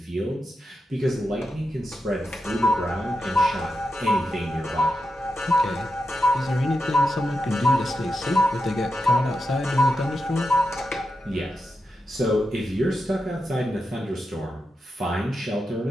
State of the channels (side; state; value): both; normal; correlation 0.87